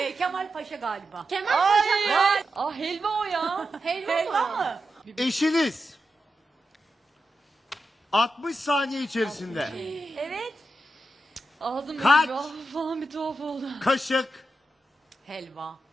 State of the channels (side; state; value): both; normal; correlation 0.89